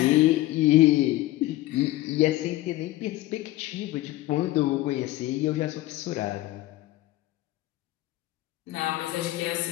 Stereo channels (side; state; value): right; quieter; 16.8 dB